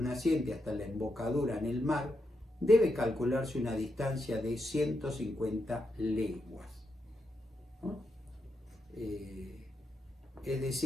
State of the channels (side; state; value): both; normal; correlation 0.84